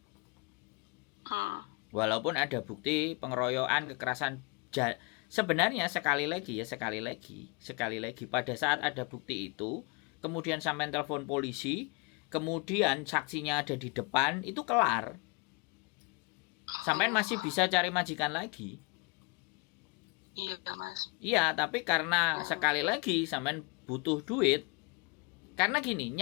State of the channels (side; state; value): right; quieter; 30.3 dB